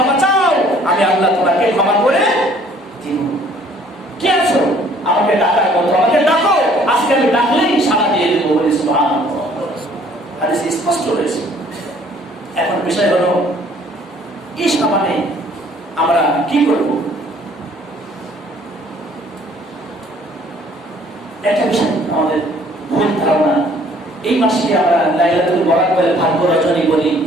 চাও, আমি আল্লাহ তোমাকে ক্ষমা করে দিব। কি আছো আমাকে ডাকার মতো, আমাকে ডাকো, আজকে আমি ডাকলেই সাড়া দিয়ে দেবো বলে সুবহানাল্লাহ। হাদিস স্পষ্ট রয়েছে। এখন বিষয় হলো এই সামানে আমরা কি করব? একটা বিষয় আমাদের ভুল ধারণা, এই মাসকে আমরা লাইলাতুল বরাত বলে ভাগ্য রজনী বলি।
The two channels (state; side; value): normal; both; correlation 0.58